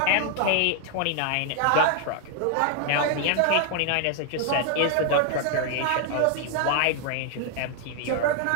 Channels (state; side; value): different; both; correlation 0.00